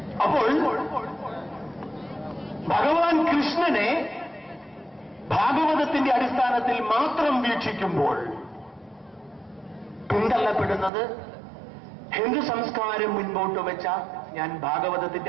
അപ്പോൾ ഭഗവാൻ കൃഷ്ണനെ ഭാഗവതത്തിന്റെ അടിസ്ഥാനത്തിൽ മാത്രം വീക്ഷിക്കുമ്പോൾ പിന്തള്ളപ്പെടുന്നത് ഹിന്ദു സംസ്കാരം മുൻപോട്ട് വെച്ച, ഞാൻ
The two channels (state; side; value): drops out; left; at 10.9 s